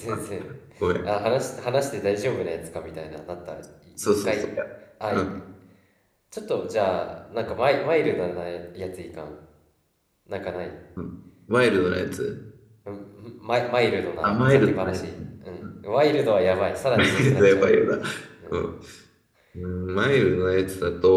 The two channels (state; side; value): identical; both; correlation 1.00